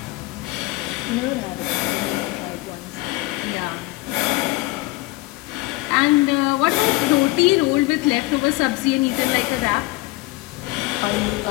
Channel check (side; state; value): right; quieter; 21.0 dB